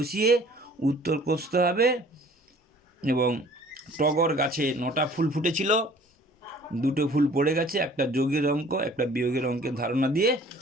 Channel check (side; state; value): both; normal; correlation 0.52